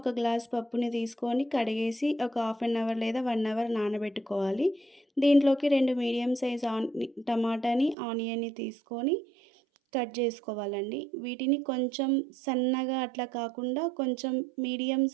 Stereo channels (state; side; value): drops out; left; at 8.0 s